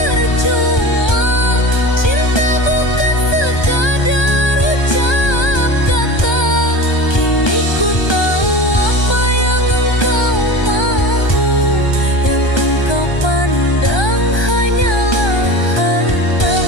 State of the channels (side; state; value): right; late; 1.2 ms